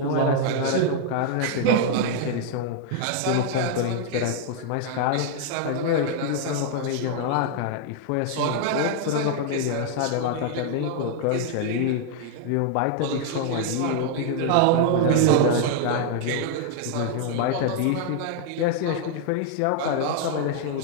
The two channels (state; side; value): different; both; correlation 0.00